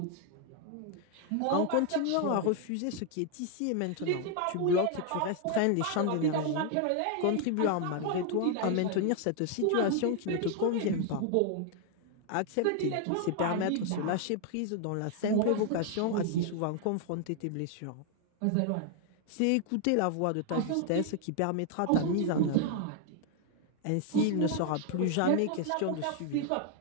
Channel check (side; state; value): both; different; correlation 0.00